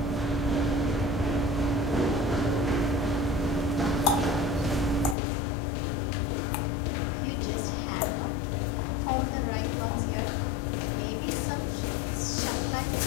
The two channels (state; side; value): drops out; right; at 5.2 s